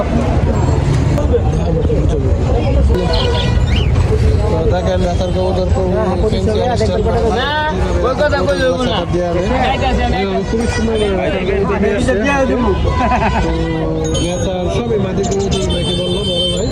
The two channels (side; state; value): both; identical; correlation 1.00